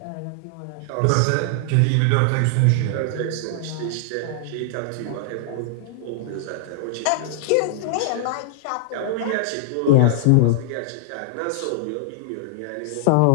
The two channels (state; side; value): different; both; correlation -0.01